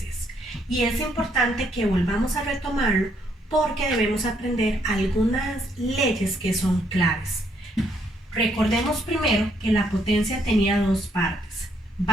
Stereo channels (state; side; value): normal; both; correlation 0.71